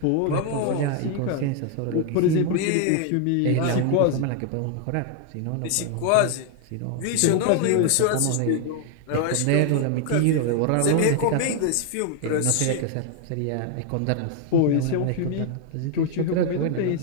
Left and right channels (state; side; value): different; both; correlation 0.00